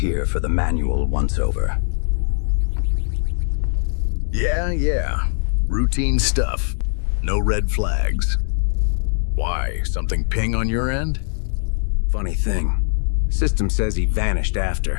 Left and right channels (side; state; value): right; silent; digital silence